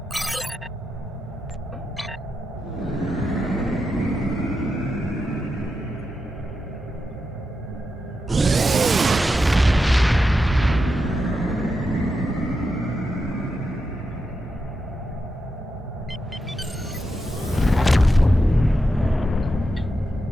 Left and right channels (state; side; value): normal; both; correlation 0.87